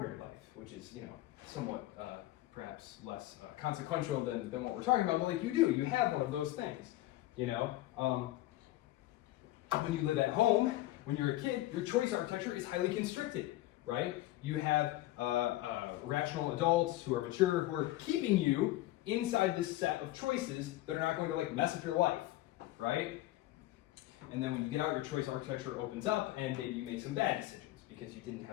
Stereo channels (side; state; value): right; quieter; 16.2 dB